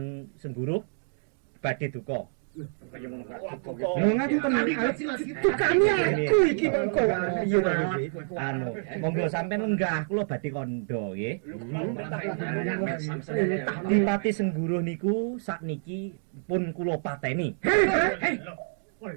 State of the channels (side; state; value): left; silent; digital silence